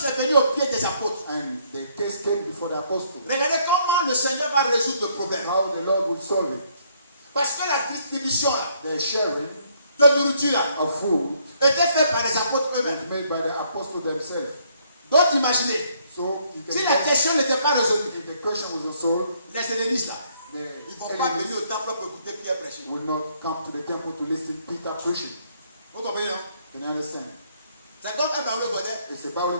est venue au pied des apôtres. And the case came before the apostles. Regardez comment le Seigneur va résoudre le problème. How the Lord will solve it. Parce que la distribution là, The sharing de nourriture là, of food était faite par les apôtres was eux-mêmes. made by the apostles themselves. Donc imaginez, So you can si la question n'était pas résolue, if the question was solved, les hellénistes là, Ils ne vont pas venir au temple pour écouter Pierre prêcher. will not come to the temple to listen to Peter preaching. Vous comprenez, non? Can you understand? C'est comme un barreau godé. It's a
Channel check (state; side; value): inverted; both; correlation -0.68